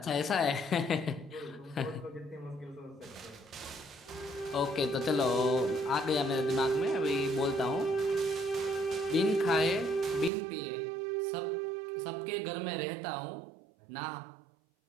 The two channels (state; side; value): drops out; left; at 10.3 s